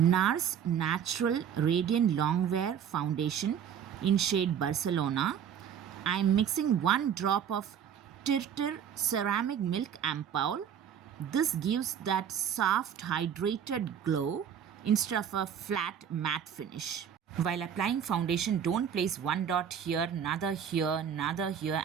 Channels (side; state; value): left; quieter; 8.6 dB